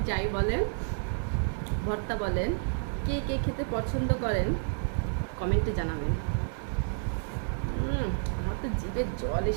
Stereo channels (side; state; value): left; silent; 58 dB below the other